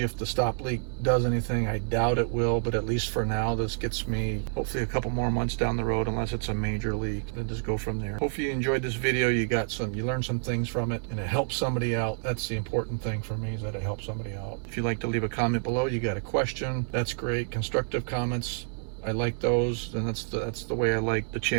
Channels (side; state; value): left; silent; 59 dB below the other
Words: the stop leak does anything. I doubt it will, but at least for now, this gets me hopefully a couple more months down the road, unless it's a major leak, and just go from there. Hopefully you enjoyed this video. You learned some things from it, and it helped somebody out. That's the important thing for me, is that it helps somebody out. If you'd like to leave a comment below, you got a question, that's great. Constructive comments, I like those, and that's the way I like the